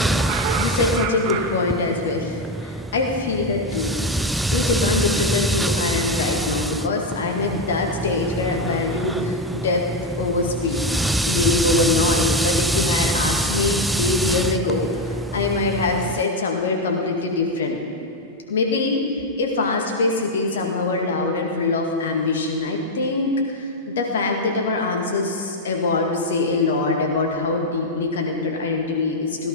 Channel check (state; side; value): normal; both; correlation 0.05